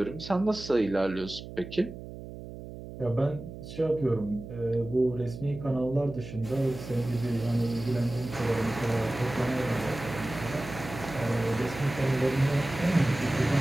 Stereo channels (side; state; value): right; noise; hum, 12 dB below the sound